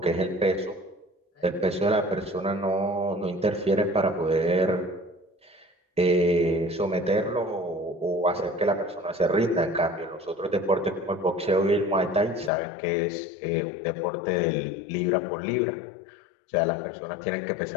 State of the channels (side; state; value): right; drops out; at 12.5 s